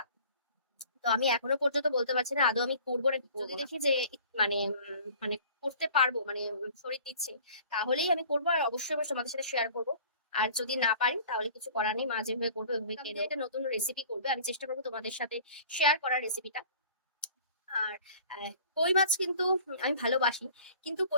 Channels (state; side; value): inverted; both; correlation -0.48